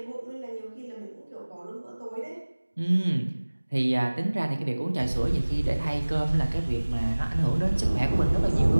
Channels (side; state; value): both; inverted; correlation -1.00